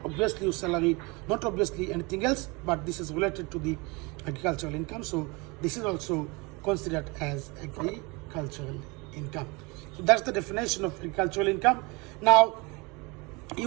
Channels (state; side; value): quieter; left; 26.9 dB